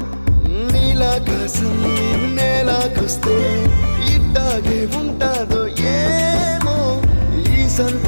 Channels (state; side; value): inverted; both; correlation -1.00